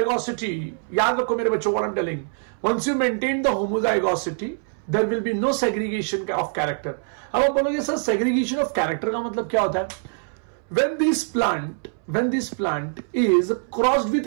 याद रखो मेरे बच्चों, what I'm telling, once you maintain the homozygosity, there will be no segregation of character. अब आप बोलोगे सर segregation of character का मतलब क्या होता है? When this plant is crossed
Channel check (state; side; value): silent; left; 63 dB below the other